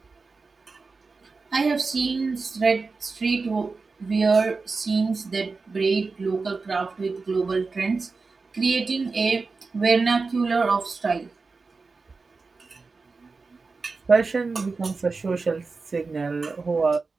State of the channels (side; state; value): left; quieter; 4.2 dB